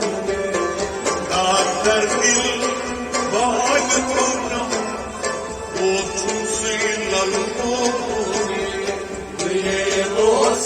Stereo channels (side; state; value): both; identical; correlation 1.00